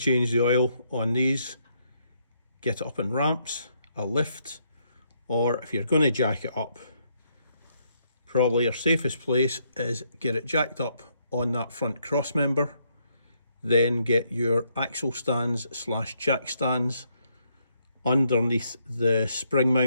the oil on these, get it up in ramps, a lift, or if you're going to jack it up, probably your safest place is get it jacked up on that front cross member, then get your axle stands slash jack stands underneath the spring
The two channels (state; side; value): inverted; both; correlation -0.74